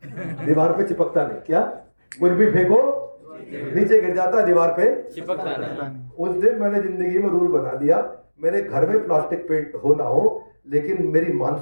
दीवार पे चिपकता नहीं। क्या? कुछ भी फेंको नीचे गिर जाता है, दीवार पे चिपकता नहीं। उस दिन मैंने जिंदगी में रूल बना दिया, मेरे घर में प्लास्टिक पेंट हो ना हो, लेकिन मेरी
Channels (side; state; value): both; inverted; correlation -1.00